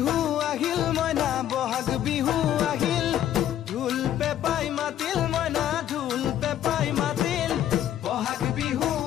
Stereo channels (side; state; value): right; quieter; 11.3 dB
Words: আহিল মইনা বহাগ বিহু আহিল ঢোল পেপাই মাতিল মইনা ঢোল পেপাই মাতিল বহাগ বিহু